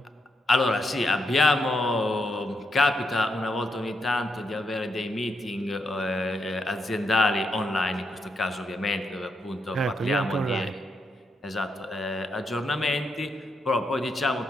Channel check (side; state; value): both; normal; correlation 0.81